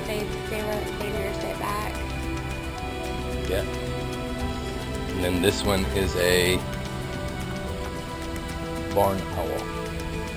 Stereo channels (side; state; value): both; identical; correlation 1.00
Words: They nursed it back. Yeah. And then this one is a barn owl.